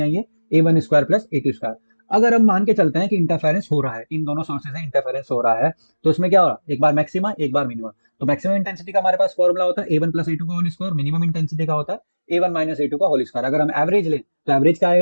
आई है, A1 square plus A2 square. अगर हम मान के चलते हैं कि इंटरफेरेंस हो रहा है, इन दोनों सोर्सेज से इंटरफेरेंस हो रहा है, तो इसमें क्या हो रहा है, एक बार मैक्सिमा एक बार मिनिमम। तो मैक्सिमम इंटेंसिटी का हमारे पास फॉर्मूला होता है A1 प्लस A2 का होल स्क्वायर, मिनिमम इंटेंसिटी का होता है A1 माइनस A2 का होल स्क्वायर। अगर हम एवरेज लें तो एवरेज क्या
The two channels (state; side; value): inverted; both; correlation -1.00